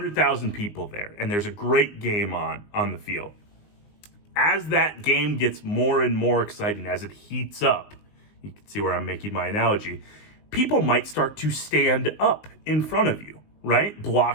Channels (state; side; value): late; right; 19 ms